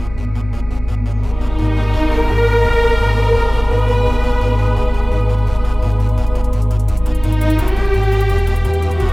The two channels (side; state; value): left; noise; hum, 15 dB below the sound